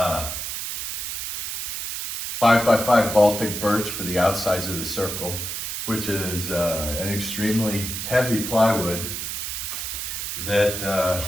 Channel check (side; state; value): right; noise; hiss, 4 dB below the sound